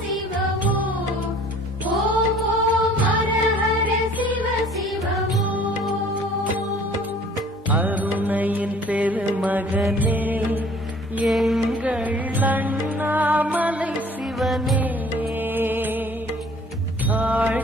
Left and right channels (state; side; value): normal; both; correlation 0.52